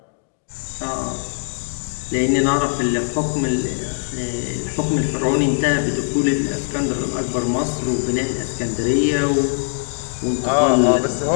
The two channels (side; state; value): right; silent; digital silence